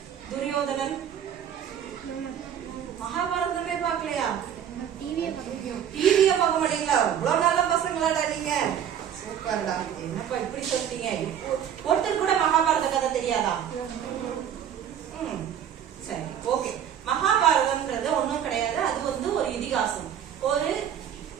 துரியோதனன், மகாபாரதமே பாக்கலையா? டிவிய பார்க்க மாட்டீங்களா? இவ்வளவு நல்ல பசங்களாடா நீங்க. சூப்பர்டா. என்னப்பா இப்படி சொல்லிட்டீங்க? ஒருத்தர் கூட மகாபாரத கதை தெரியாதா? சரி, ஓகே. மகாபாரதம்ன்றது ஒண்ணும் கிடையாது. அது வந்து ஒரு இதிகாசம். ஒரு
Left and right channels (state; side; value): quieter; left; 9.3 dB